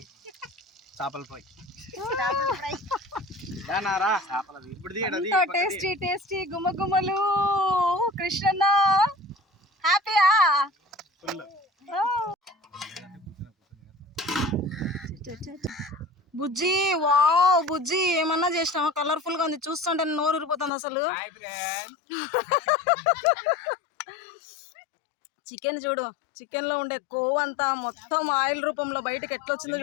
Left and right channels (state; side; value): drops out; right; at 20.7 s